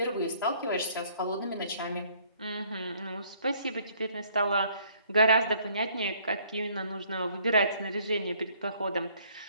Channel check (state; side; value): inverted; both; correlation -0.62